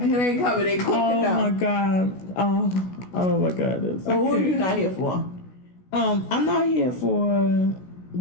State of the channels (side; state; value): right; late; 16 ms